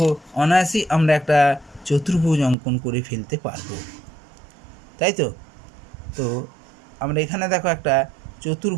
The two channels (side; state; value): left; drops out; at 2.6 s